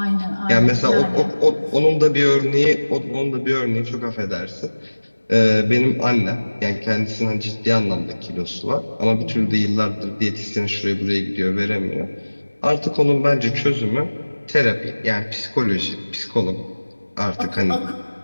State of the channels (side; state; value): both; inverted; correlation -1.00